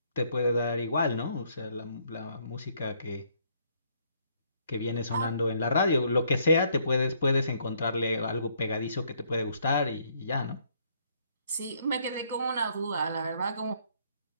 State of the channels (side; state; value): both; inverted; correlation -0.67